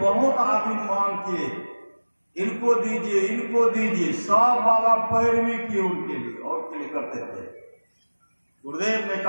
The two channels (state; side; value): inverted; both; correlation -1.00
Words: आदमी मांग किए, इनको दीजिए, इनको दीजिए, सब बाबा पैरवी किए उनके लिए और के लिए करते थे। गुरुदेव ने